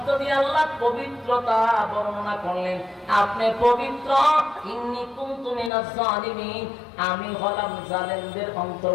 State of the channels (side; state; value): right; drops out; at 5.7 s